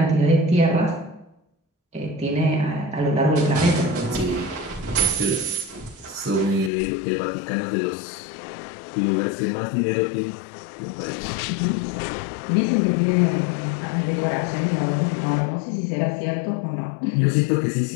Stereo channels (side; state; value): right; drops out; at 6.7 s